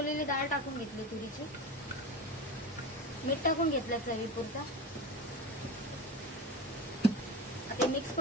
डाळ टाकून घेतली तुरीची. मीठ टाकून घेतलं चवीपुरता. आता मिक्स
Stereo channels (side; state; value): both; normal; correlation 0.27